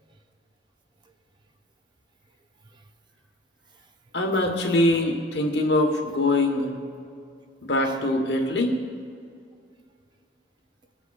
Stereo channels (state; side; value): normal; both; correlation 0.42